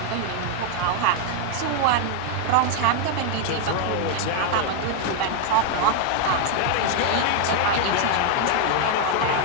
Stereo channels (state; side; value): different; both; correlation 0.00